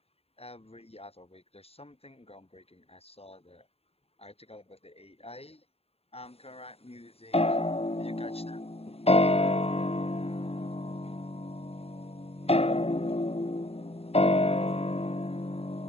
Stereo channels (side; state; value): right; late; 0.29 ms